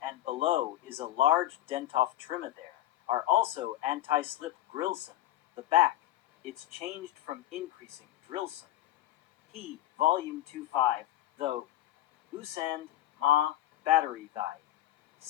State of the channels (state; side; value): quieter; right; 14.1 dB